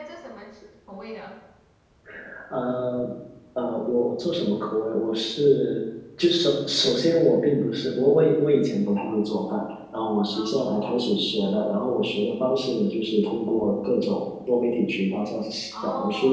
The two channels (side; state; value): both; identical; correlation 1.00